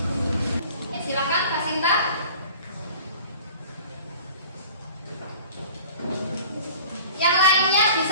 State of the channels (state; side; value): inverted; both; correlation -0.45